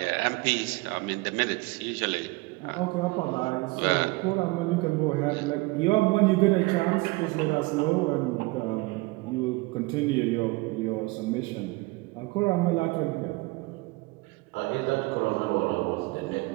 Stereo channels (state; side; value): quieter; left; 23.7 dB